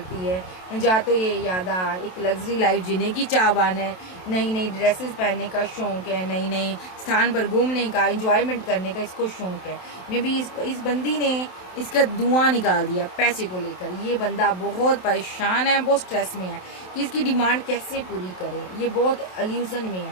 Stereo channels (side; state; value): right; late; 27 ms